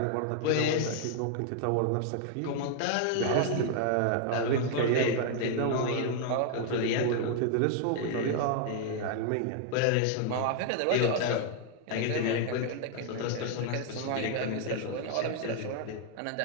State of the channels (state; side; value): different; both; correlation 0.00